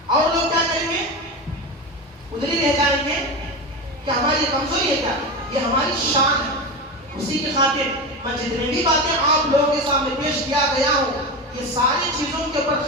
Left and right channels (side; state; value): both; normal; correlation 0.21